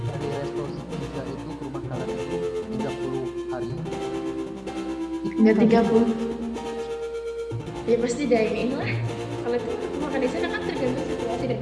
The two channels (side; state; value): both; identical; correlation 1.00